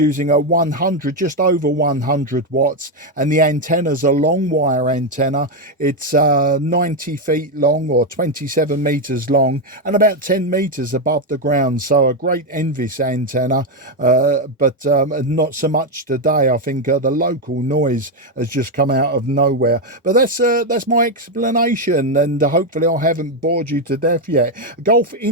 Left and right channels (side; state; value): both; normal; correlation 0.05